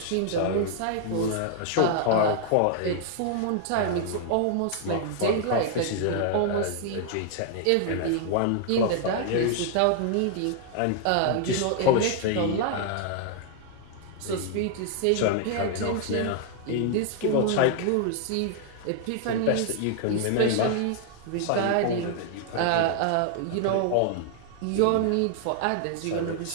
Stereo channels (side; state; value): both; different; correlation 0.00